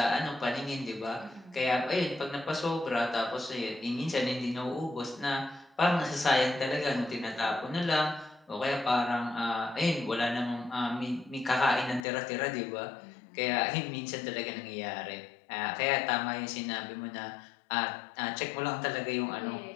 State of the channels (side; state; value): right; drops out; at 12.1 s